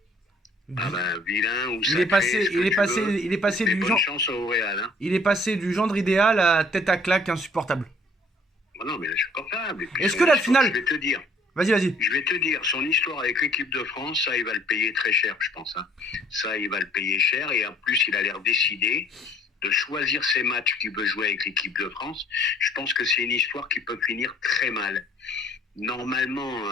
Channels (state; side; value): normal; both; correlation 0.58